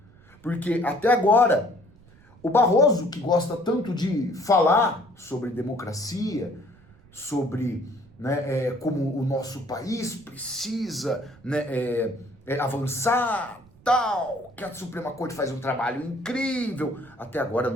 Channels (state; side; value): noise; right; rumble, 26 dB below the sound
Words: Porque até agora, o Barroso, que gosta tanto de falar sobre democracia, sobre, né, como o nosso país precisa, né, avançar, tal, que a Suprema Corte faz um trabalho incrível, até agora